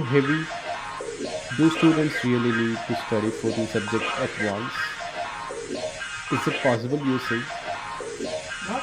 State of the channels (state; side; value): identical; both; correlation 1.00